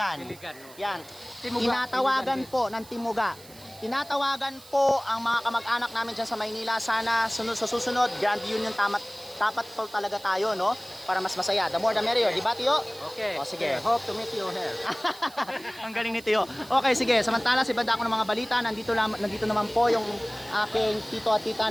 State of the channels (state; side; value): noise; right; hiss, 21 dB below the sound